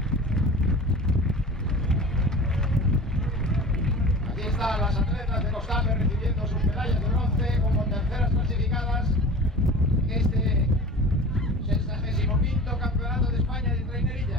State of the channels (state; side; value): normal; both; correlation 0.38